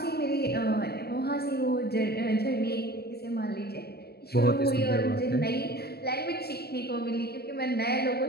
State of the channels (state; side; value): late; right; 0.46 ms